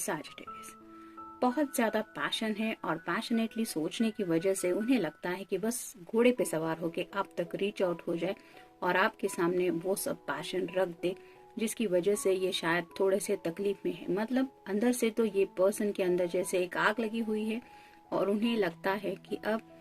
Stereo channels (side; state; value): both; identical; correlation 1.00